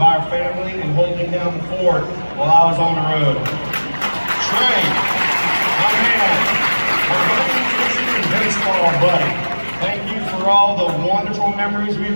our family and holding down the fort while I was on the road. Trey, my man, my baseball buddy. Thank you for all the wonderful memories we've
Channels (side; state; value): both; inverted; correlation -1.00